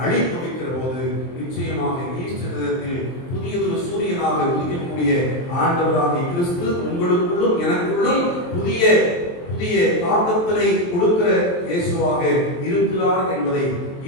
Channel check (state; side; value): late; right; 23 ms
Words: அழித்து வைக்கிற போது நிச்சயமாக ஈஸ்டர் தினத்தில் புதியதொரு சூரியனாக உதிக்கக்கூடிய ஆண்டவராகிய கிறிஸ்து உங்களுக்குள்ளும் எனக்குள்ளும் புதிய தாக்கத்தினை கொடுக்கிற இயேசுவாக